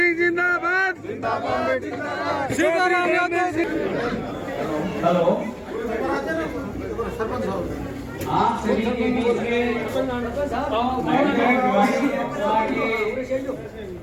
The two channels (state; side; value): identical; both; correlation 1.00